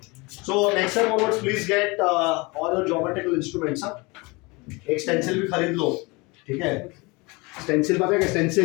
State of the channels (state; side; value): quieter; right; 25.9 dB